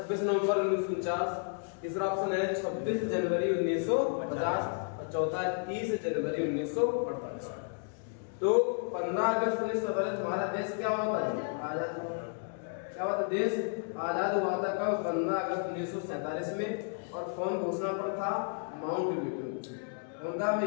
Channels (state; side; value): silent; right; 55 dB below the other